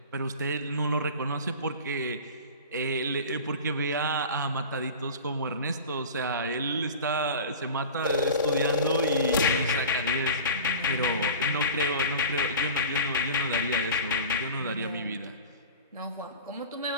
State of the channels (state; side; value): inverted; both; correlation -0.35